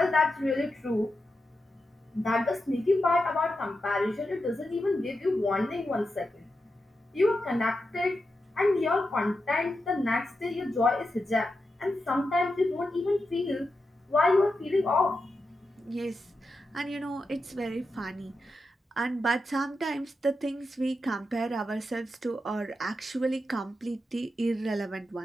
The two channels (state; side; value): normal; both; correlation 0.88